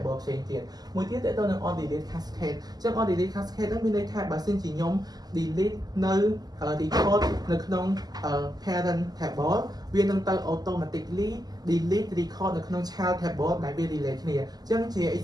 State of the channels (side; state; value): left; late; 0.19 ms